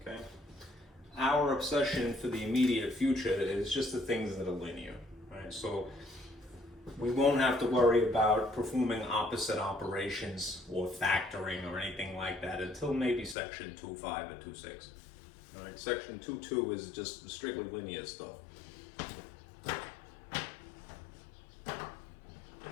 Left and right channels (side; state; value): right; drops out; at 13.4 s